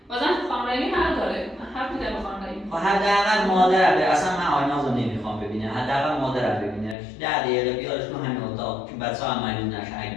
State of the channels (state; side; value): drops out; right; at 7.0 s